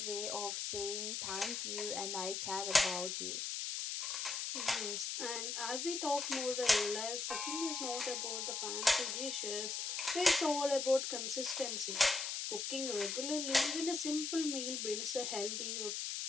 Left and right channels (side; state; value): left; noise; hiss, 2 dB below the sound